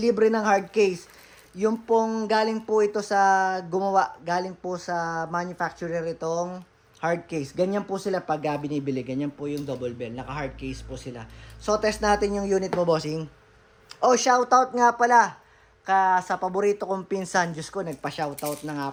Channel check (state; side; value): identical; both; correlation 1.00